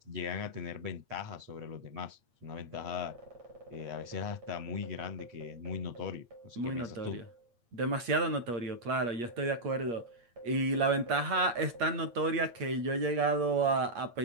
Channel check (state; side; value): late; left; 8.5 ms